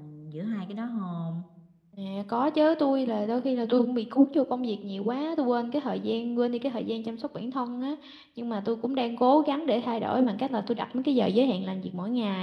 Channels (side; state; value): both; identical; correlation 1.00